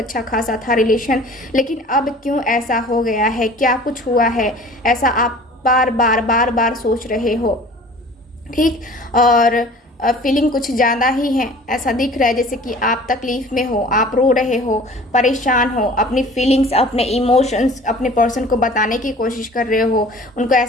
खासा था रिलेशन, लेकिन अब क्यों ऐसा हो गया है, क्या कुछ हुआ है, ऐसा आप बार बार सोच रहे हो। ठीक, और फीलिंग कुछ ज़्यादा ही है, ऐसा दिख रहा है जैसे कि आप तकलीफ़ में हो, आप रो रहे हो, परेशान हो, अपनी फीलिंग्स, अपने इमोशंस अपने पर्सन को बताने की कोशिश कर रहे हो, उनको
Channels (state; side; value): normal; both; correlation 0.46